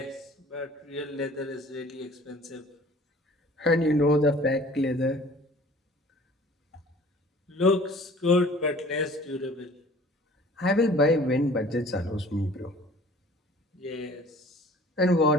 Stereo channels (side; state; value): both; normal; correlation 0.50